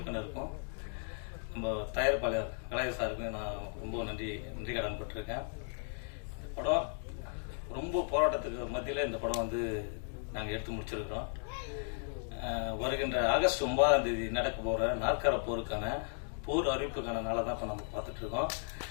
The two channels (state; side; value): silent; right; 54 dB below the other